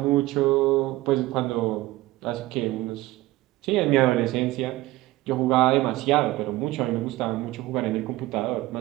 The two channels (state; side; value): quieter; left; 17.9 dB